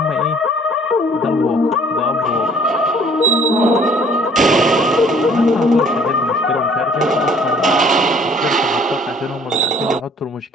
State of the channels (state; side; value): normal; both; correlation 0.57